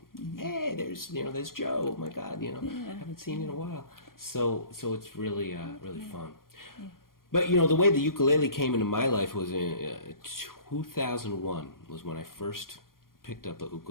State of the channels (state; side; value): late; right; 0.91 ms